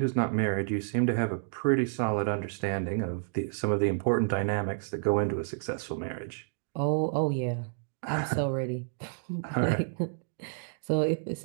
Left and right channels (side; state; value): left; silent; digital silence